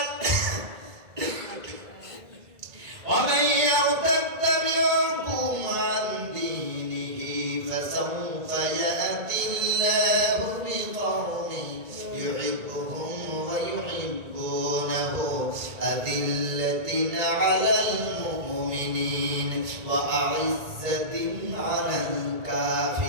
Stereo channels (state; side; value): late; left; 2.3 ms